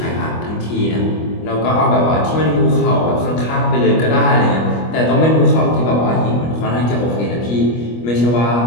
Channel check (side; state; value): right; late; 25 ms